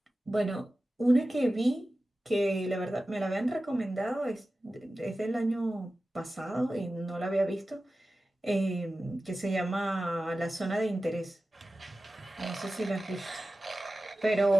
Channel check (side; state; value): both; normal; correlation 0.95